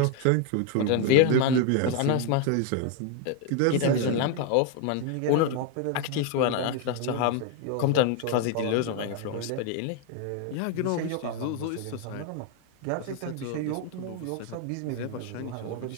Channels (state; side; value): different; both; correlation 0.01